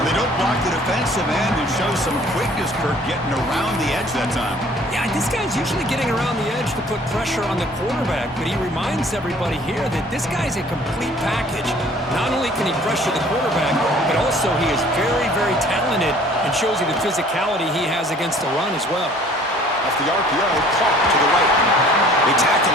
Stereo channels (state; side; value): normal; both; correlation 0.54